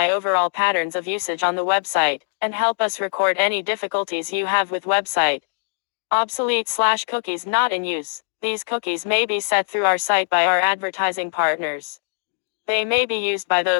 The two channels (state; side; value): silent; right; digital silence